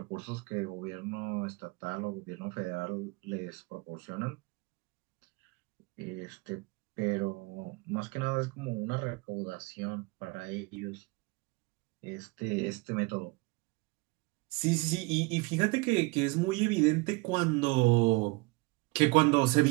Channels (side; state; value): left; quieter; 25.1 dB